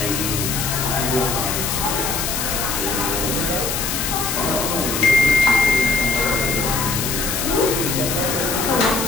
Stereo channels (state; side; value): noise; left; hiss, 2 dB below the sound